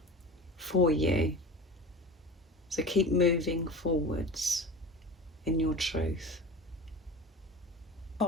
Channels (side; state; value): both; normal; correlation 0.33